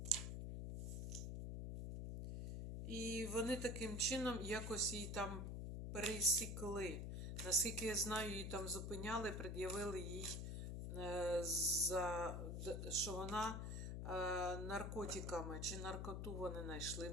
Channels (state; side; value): noise; left; hum, 4 dB below the sound